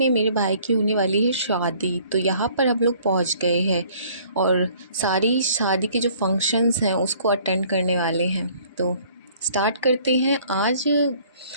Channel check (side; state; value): both; inverted; correlation -0.57